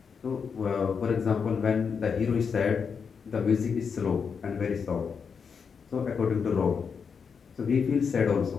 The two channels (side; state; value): right; quieter; 6.1 dB